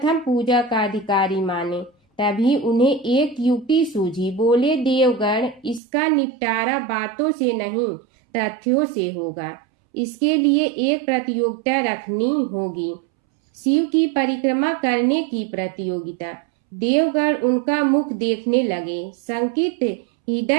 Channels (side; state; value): left; drops out; at 5.8 s